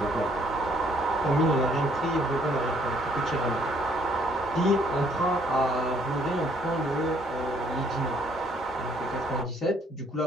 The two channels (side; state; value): both; normal; correlation 0.64